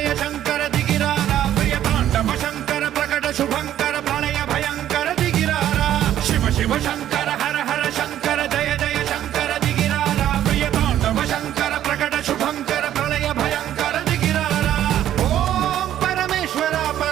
शंकर दिगिरारा प्रिय तांडव शंकर प्रकट शुभंकर प्रलय भयंकर दिगिरारा शिव शिव शंकर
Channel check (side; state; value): left; quieter; 11.7 dB